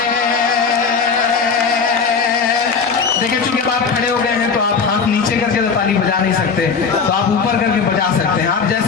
देखिए चूंकि आप खड़े हो गए हैं तो आप हाथ नीचे करके तो ताली बजा नहीं सकते, तो आप ऊपर करके बजा सकते हैं। आप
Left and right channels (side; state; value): right; quieter; 5.4 dB